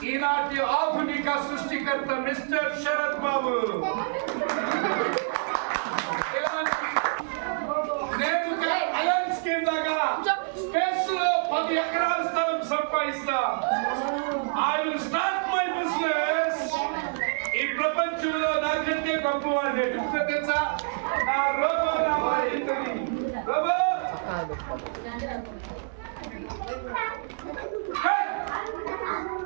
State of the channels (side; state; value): left; silent; digital silence